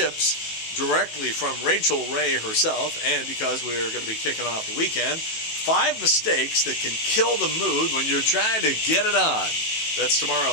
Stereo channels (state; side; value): late; right; 18 ms